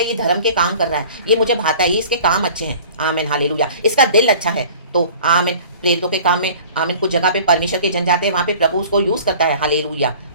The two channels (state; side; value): inverted; both; correlation -0.45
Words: ये धर्म के काम कर रहा है, ये मुझे भाता है, ये इसके काम अच्छे हैं। Amen, hallelujah. इसका दिल अच्छा है, तो आमीन, प्रेरितों के काम में आमीन, कुछ जगह पे परमेश्वर के जन जाते हैं, वहाँ पे प्रभु उसको यूज़ करता है। Hallelujah,